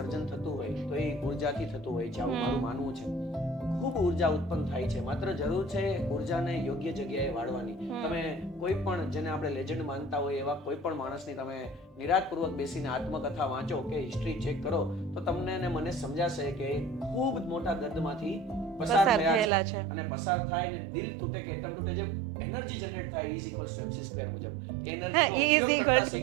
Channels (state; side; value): drops out; left; at 19.5 s